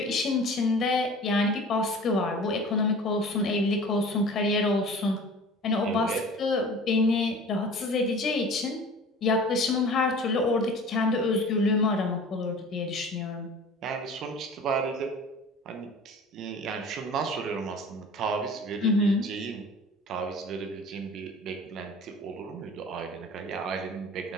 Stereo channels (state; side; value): normal; both; correlation 0.42